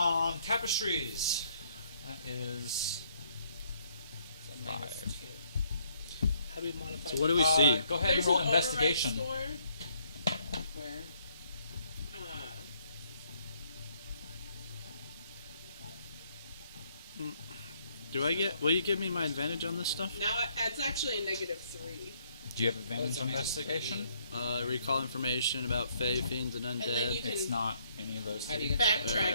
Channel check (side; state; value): both; inverted; correlation -0.68